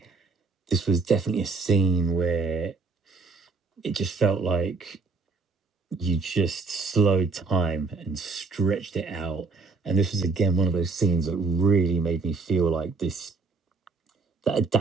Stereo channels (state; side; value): quieter; left; 4.1 dB